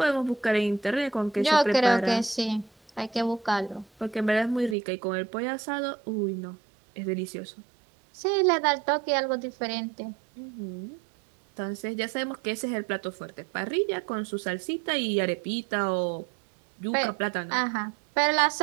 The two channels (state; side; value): drops out; left; at 4.8 s